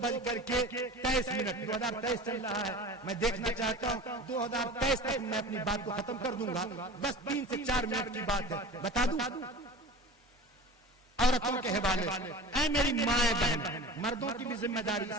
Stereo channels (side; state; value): both; normal; correlation 0.36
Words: 2023 چل رہا ہے، میں دیکھنا چاہتا ہوں 2023 تک میں اپنی بات کو ختم کر دوں گا۔ بس 3 سے 4 منٹ کی بات ہے، بتا دوں عورتوں کے حوالے سے۔ اے میری مائیں بہن، مردوں کی بھی ذمہ داری،